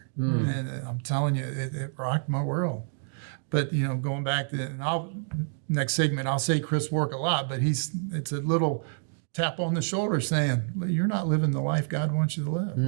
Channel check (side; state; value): left; silent; digital silence